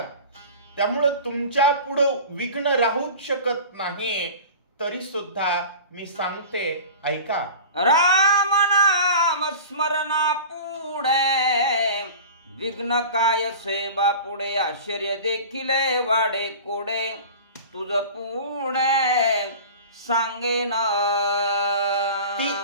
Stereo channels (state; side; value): inverted; both; correlation -0.37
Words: त्यामुळं तुमच्या पुढं विघ्न राहूच शकत नाही तरी सुद्धा मी सांगते ऐका। राम नाम स्मरणा पुढे विघ्न काय सेवा पुढे आश्चर्य देखील वाडे कोडे तुझ पुढे सांगेन। ती